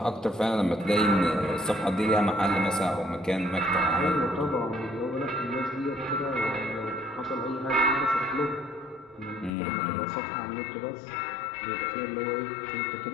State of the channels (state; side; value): drops out; right; at 9.5 s